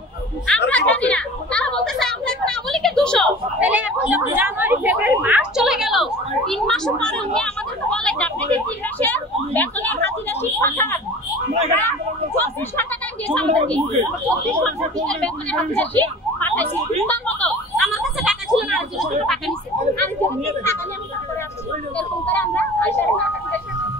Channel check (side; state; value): both; normal; correlation 0.41